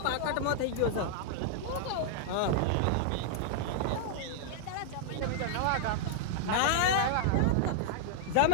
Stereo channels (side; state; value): both; different; correlation -0.01